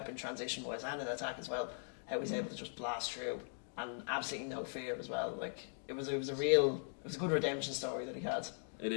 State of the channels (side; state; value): right; silent; 51 dB below the other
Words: transition wise and in attack as well, how he's able to just blast through and absolutely no fear as well. It was a good redemption story that he had. It